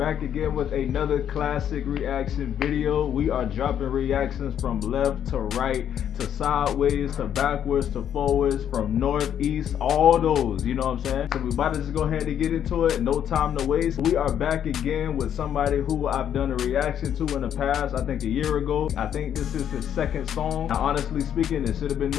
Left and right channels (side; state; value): right; quieter; 9.5 dB